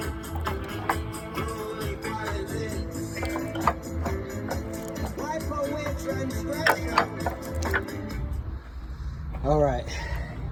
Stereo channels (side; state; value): both; identical; correlation 1.00